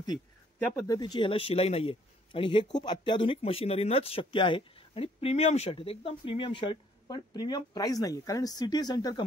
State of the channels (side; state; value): both; normal; correlation 0.63